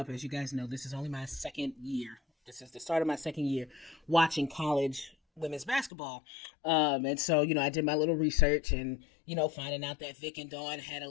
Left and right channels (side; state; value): right; drops out; at 5.9 s